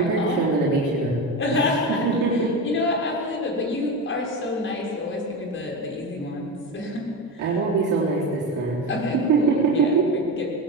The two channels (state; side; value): normal; both; correlation 0.21